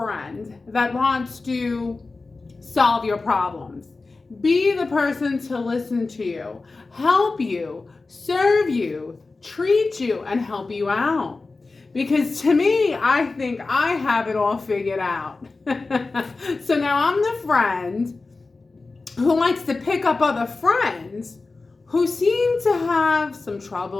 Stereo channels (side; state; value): right; quieter; 3.7 dB